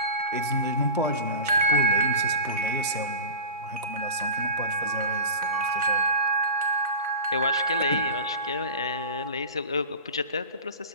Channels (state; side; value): inverted; both; correlation -0.33